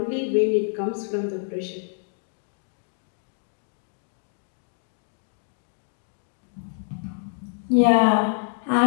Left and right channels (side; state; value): right; silent; digital silence